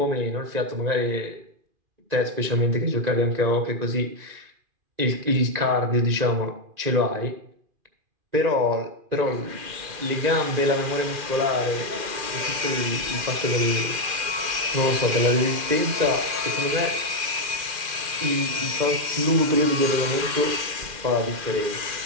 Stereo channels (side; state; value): left; late; 2.5 ms